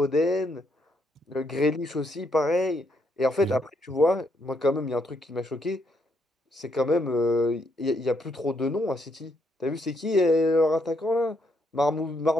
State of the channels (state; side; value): normal; both; correlation 0.75